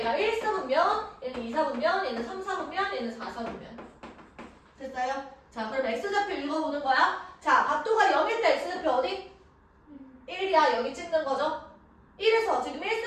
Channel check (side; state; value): both; identical; correlation 1.00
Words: 1사분면, 얘는 2사분면, 얘는 3사분면, 얘는 4사분면. 됐어요? 자, 그럼 X좌표 읽어보는 거야. 자, 각도가 0일 때 X좌표 어디? 1이야. 여기 찍는 거죠. 1에서 지금